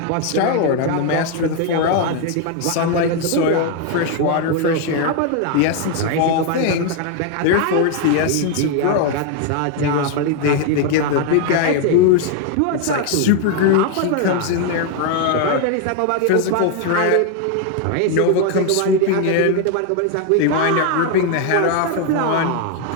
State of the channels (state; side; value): different; both; correlation 0.01